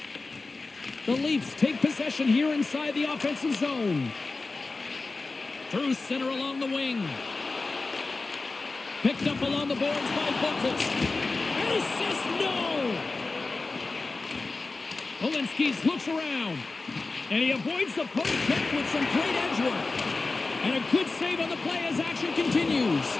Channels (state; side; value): quieter; right; 3.6 dB